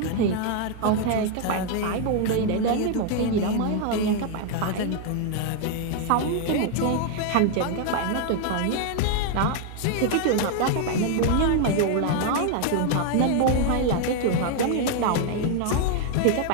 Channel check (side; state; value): both; different; correlation 0.00